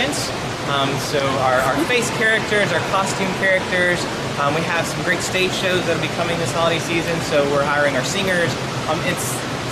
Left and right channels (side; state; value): both; identical; correlation 1.00